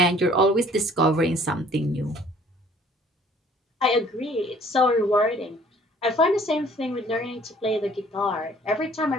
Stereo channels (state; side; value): normal; both; correlation 0.55